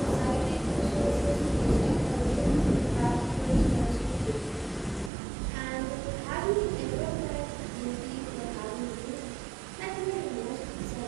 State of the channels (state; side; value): drops out; left; at 5.1 s